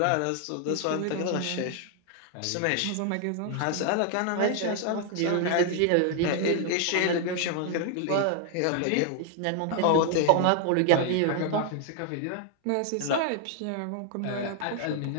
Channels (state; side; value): different; both; correlation 0.00